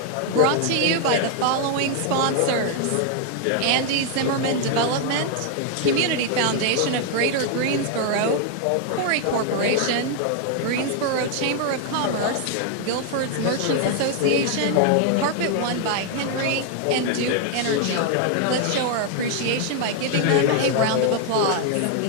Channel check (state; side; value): different; both; correlation 0.00